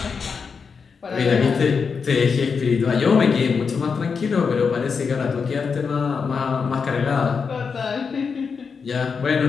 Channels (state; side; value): quieter; right; 5.6 dB